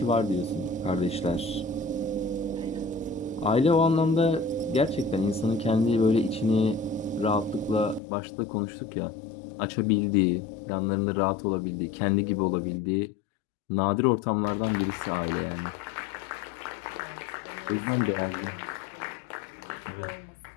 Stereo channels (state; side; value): drops out; right; at 8.0 s